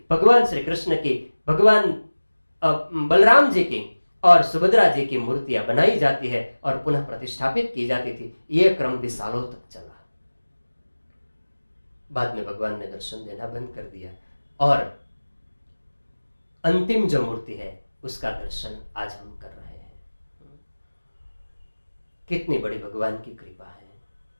भगवान श्री कृष्ण की, भगवान बलराम जी की और सुभद्रा जी की मूर्तियां बनाई जाती है और पुनः प्रतिष्ठापित की जाती थी। यह क्रम भी सालों तक चला। बाद में भगवान ने दर्शन देना बंद कर दिया और अंतिम जो मूर्ति है उसका दर्शन आज हम कर रहे हैं। कितनी बड़ी भगवान की कृपा है।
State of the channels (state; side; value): inverted; both; correlation -1.00